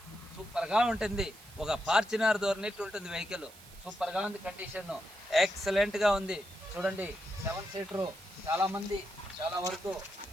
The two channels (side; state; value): right; noise; hiss, 20 dB below the sound